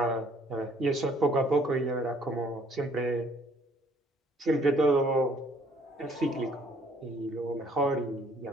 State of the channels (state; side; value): normal; both; correlation 0.62